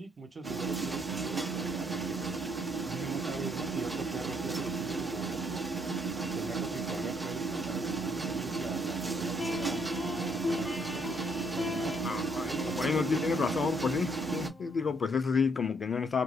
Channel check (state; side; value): normal; both; correlation 0.69